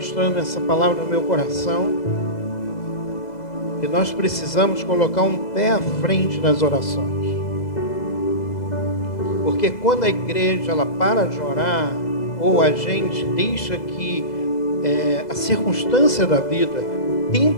essa palavra no meu coração, que nós precisamos colocar um pé à frente nas orações. Porque quando a igreja ela para de orar, ou a gente deixa que a circunstância da vida, o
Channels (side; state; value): right; late; 2.0 ms